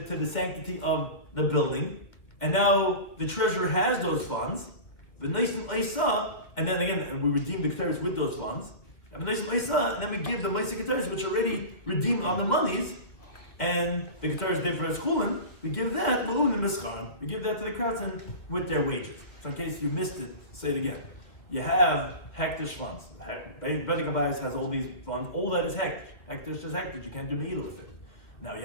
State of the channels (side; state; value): right; late; 2.4 ms